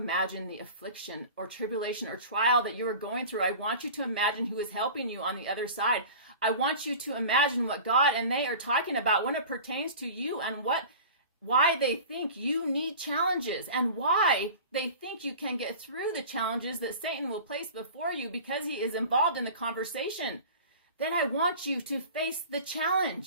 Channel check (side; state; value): both; inverted; correlation -0.38